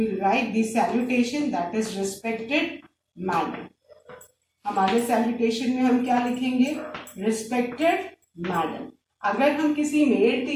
will write the salutation, that is respected madam. हमारे salutation में हम क्या लिखेंगे? Respected madam. अगर हम किसी मेल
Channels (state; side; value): identical; both; correlation 1.00